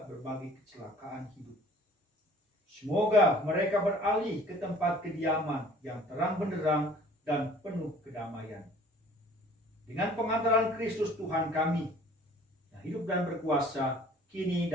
berbagai kecelakaan hidup. Semoga mereka beralih ke tempat kediaman yang terang benderang dan penuh kedamaian. Dengan pengantaran Kristus Tuhan kami, yang hidup dan berkuasa, kini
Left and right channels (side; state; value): both; normal; correlation 0.51